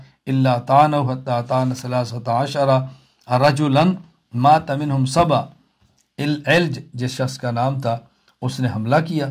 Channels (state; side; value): identical; both; correlation 1.00